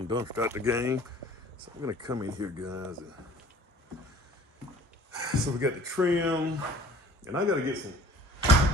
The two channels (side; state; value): both; normal; correlation 0.49